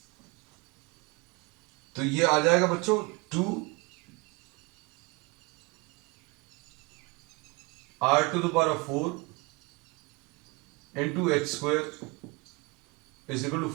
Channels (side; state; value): left; quieter; 26.6 dB